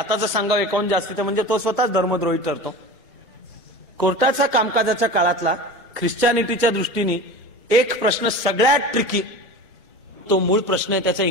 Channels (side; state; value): both; normal; correlation 0.33